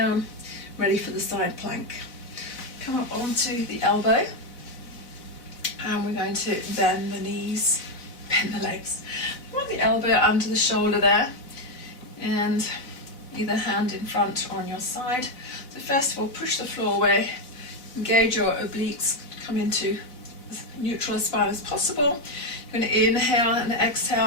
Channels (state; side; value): late; right; 4.0 ms